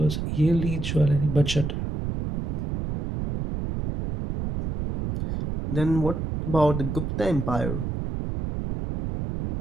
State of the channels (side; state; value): right; noise; rumble, 3 dB below the sound